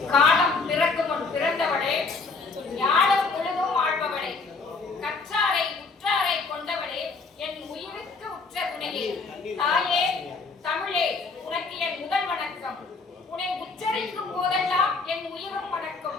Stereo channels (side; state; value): right; quieter; 4.2 dB